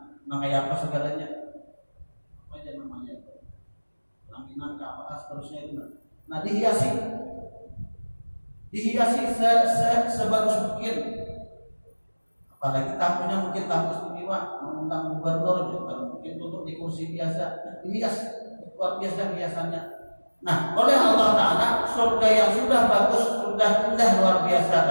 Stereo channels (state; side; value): inverted; both; correlation -1.00